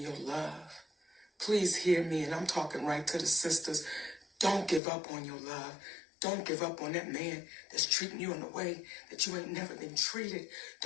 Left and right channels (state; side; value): drops out; right; at 4.8 s